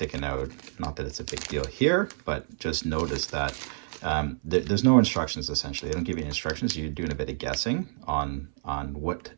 out. Not that it's a big deal here, but just notice that there's no instructions. Essentially they don't give you instructions. You're doing a bit of guessing on what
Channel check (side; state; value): left; silent; 58 dB below the other